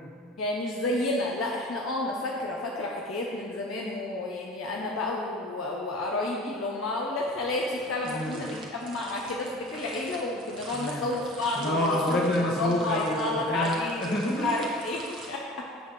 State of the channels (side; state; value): both; normal; correlation 0.40